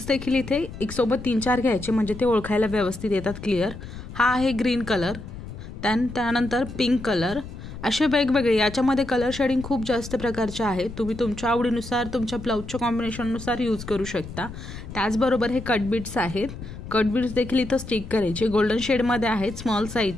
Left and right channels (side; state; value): left; noise; rumble, 11 dB below the sound